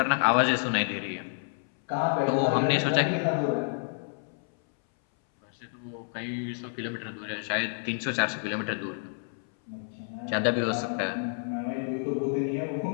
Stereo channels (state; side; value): silent; right; 58 dB below the other